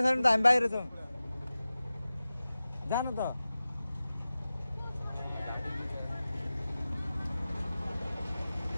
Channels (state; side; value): inverted; both; correlation -0.95